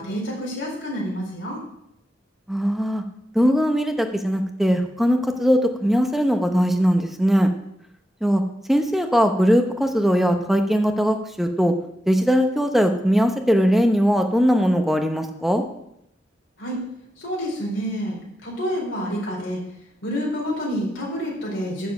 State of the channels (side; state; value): both; normal; correlation 0.89